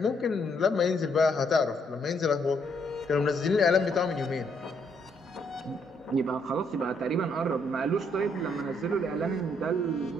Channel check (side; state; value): both; normal; correlation 0.72